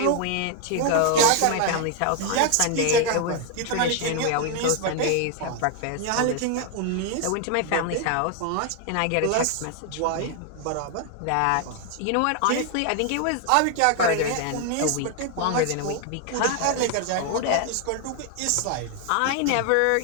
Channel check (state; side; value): different; both; correlation 0.00